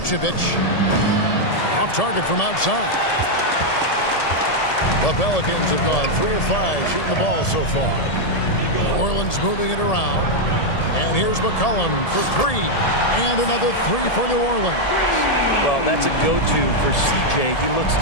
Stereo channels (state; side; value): late; right; 1.8 ms